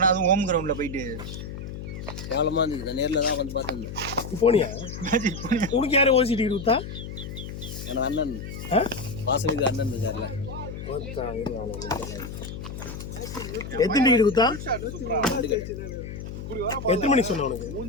அதுவும் ஹோம் கிரவுண்டில் போயிட்டு கேவலமாக இருந்துச்சு. நான் நேரில் தான் வந்து பார்த்துருந்தேன். போனியா உனக்கு யாரும் ஓசி டிக்கெட் கொடுத்தா? எனக்கு அண்ணன் வாசலுக்கு அண்ணன் இருக்கார்ல. எத்தனை டிக்கெட் கொடுத்தா? எத்தனை மணிக்கு சொன்ன உனக்கு?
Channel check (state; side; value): noise; left; hum, 9 dB below the sound